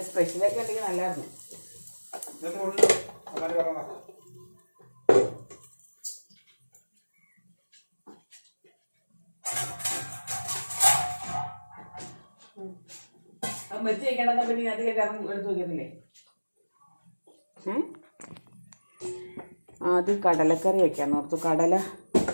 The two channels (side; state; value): both; inverted; correlation -1.00